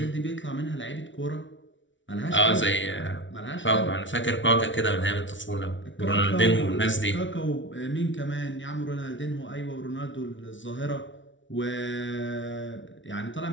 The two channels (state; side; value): late; right; 0.55 ms